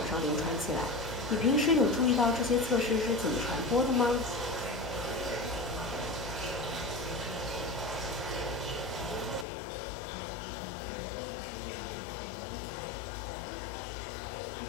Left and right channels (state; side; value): drops out; right; at 9.5 s